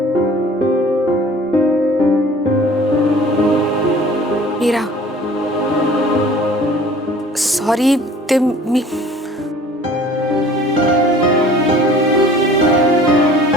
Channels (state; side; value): normal; both; correlation 0.48